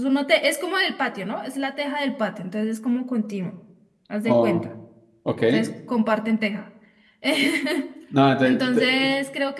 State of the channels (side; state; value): both; identical; correlation 1.00